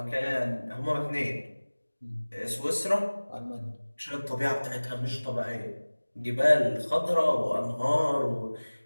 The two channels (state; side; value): inverted; both; correlation -1.00